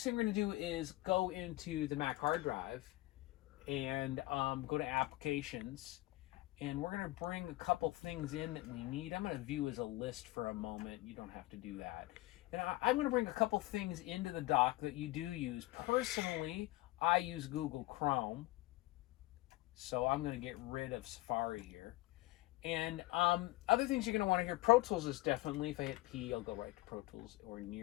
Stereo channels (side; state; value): right; quieter; 19.3 dB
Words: thing we're going to do is go into the Mac hard drive and go to applications, and we're going to bring a couple things in that we need. I'm going to view as a list for a moment. You don't have to do that. And I'm going to bring a couple things into the dock that you do use. Personally, I use Google Chrome, so I'm going to get rid of Safari here. And other things you're going to want to hear, Pro Tools is definitely, if I hit P, I'll go right to Pro Tools or